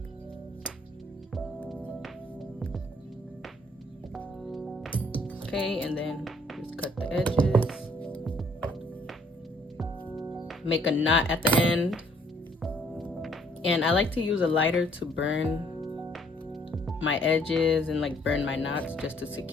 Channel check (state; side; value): normal; both; correlation 0.63